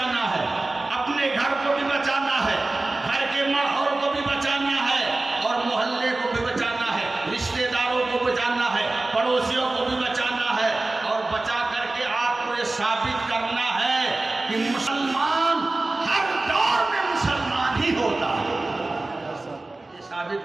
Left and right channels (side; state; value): left; quieter; 3.0 dB